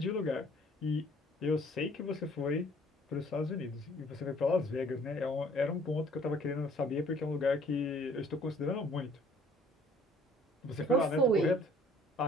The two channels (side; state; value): both; normal; correlation 0.57